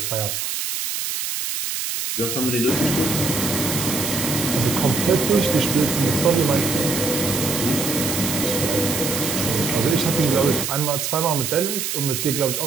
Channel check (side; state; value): right; noise; hiss, 3 dB below the sound